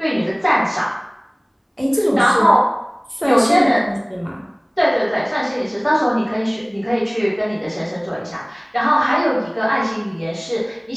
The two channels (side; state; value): both; identical; correlation 1.00